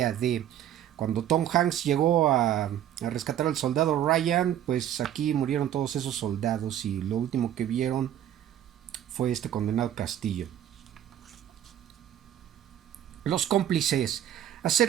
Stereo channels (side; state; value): left; quieter; 11.1 dB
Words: D. Cuando Tom Hanks llegó a rescatar al soldado Ryan, pues aquí murieron todos esos soldados y lo último que vieron fue este condenado castillo. Los cómplices.